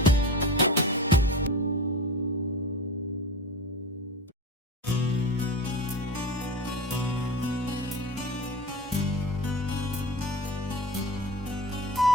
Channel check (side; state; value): both; normal; correlation 0.30